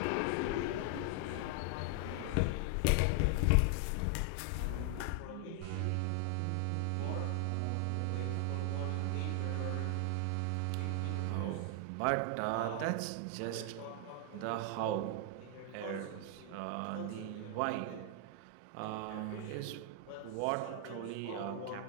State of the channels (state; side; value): different; both; correlation 0.00